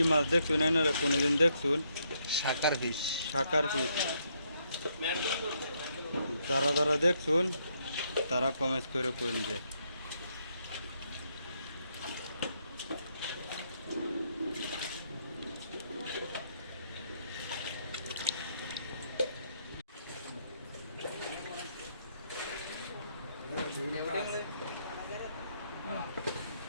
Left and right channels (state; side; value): inverted; both; correlation -0.75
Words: মাছ দেখছুন এনারা কোনোদিন দেখছুন শাকার ফিশ শাকার পিস যারা যারা দেখছুন তারা কমেন্ট করে কইন যে